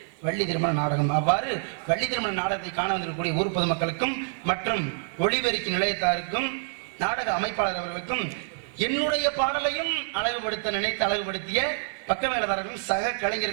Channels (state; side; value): silent; left; digital silence